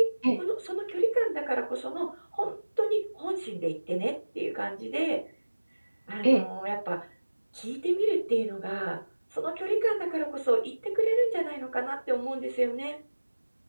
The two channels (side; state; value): both; inverted; correlation -1.00